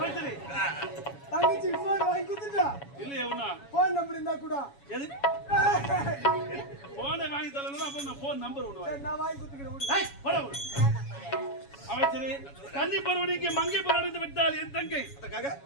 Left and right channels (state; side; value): late; right; 7.2 ms